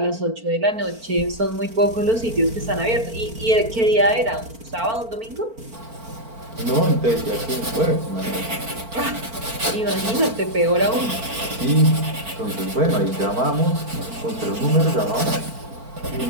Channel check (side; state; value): left; late; 4.4 ms